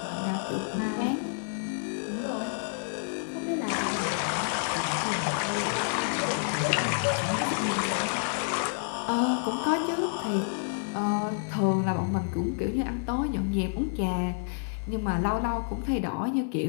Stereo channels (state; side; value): silent; right; 59 dB below the other